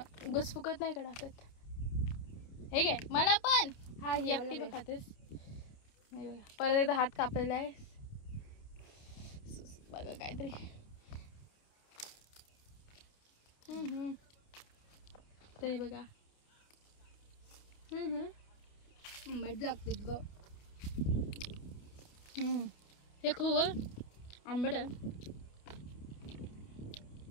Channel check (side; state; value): right; late; 29 ms